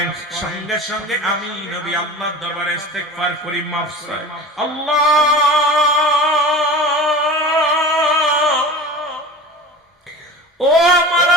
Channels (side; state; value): both; normal; correlation 0.35